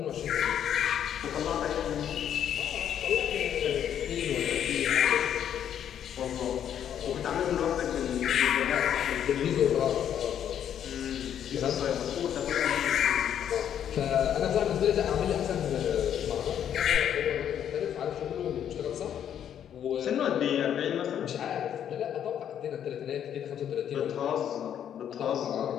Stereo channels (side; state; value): right; quieter; 9.6 dB